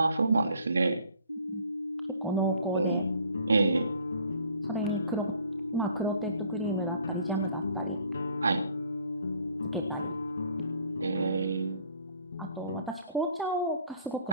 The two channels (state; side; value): inverted; both; correlation -0.57